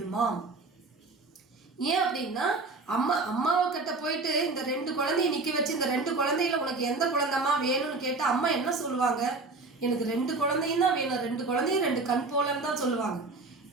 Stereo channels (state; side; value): quieter; left; 3.6 dB